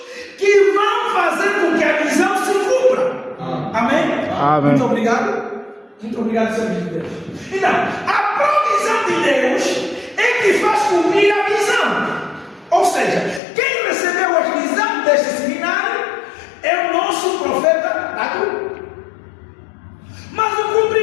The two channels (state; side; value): drops out; right; at 13.4 s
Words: Muito obrigado, Senhor de Deus. Então, a provisão de Deus é que faz cumprir a visão. Ou seja, quem recebeu a visão deste seminário é o nosso profeta Dagu. Mas o